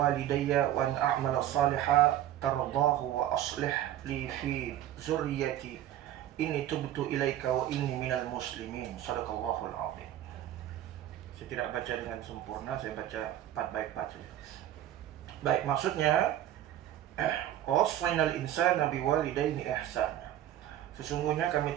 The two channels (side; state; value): left; quieter; 12.3 dB